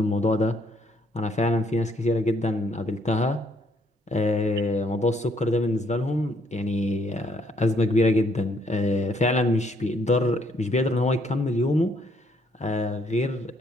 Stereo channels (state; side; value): normal; both; correlation 0.69